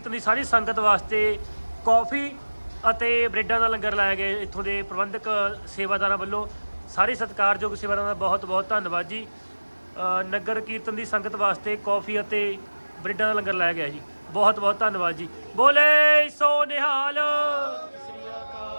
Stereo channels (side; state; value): both; inverted; correlation -1.00